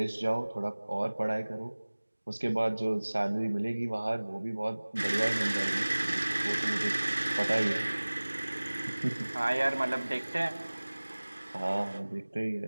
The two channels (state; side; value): inverted; both; correlation -1.00